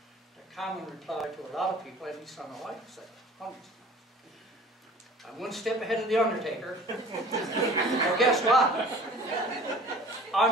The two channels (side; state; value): both; normal; correlation 0.46